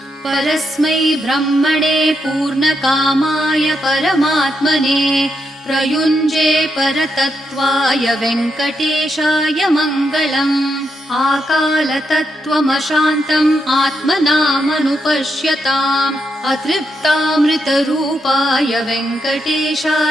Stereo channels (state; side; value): normal; both; correlation 0.82